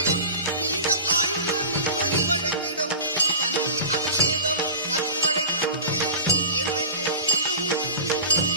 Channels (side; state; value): both; inverted; correlation -0.33